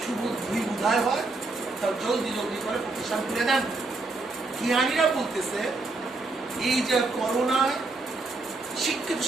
শুভ দুই উদয় হয় তাহলে জলদি জলদি করে প্রতিষ্ঠান খুলে দেন। জ্ঞানীরা বলতেছে, এই যে করোনায় শিক্ষিত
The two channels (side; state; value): left; quieter; 3.4 dB